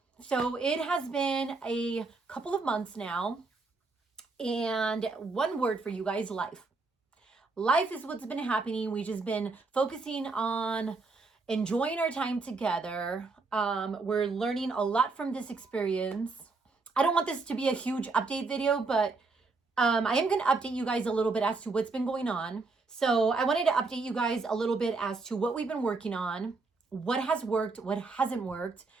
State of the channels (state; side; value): quieter; left; 3.9 dB